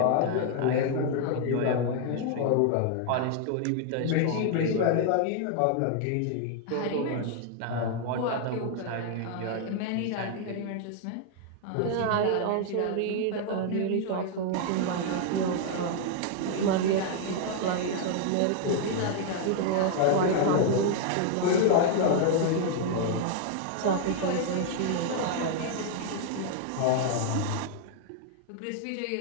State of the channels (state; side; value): different; both; correlation 0.00